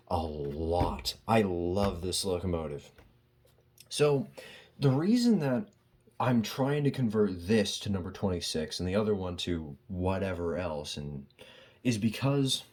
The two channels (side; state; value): both; identical; correlation 1.00